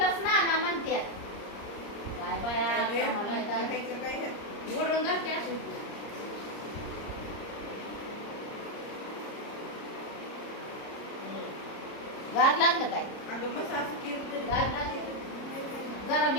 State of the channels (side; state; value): right; late; 30 ms